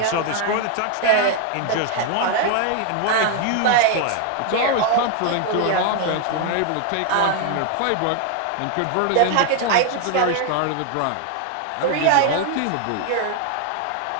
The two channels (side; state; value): both; different; correlation 0.00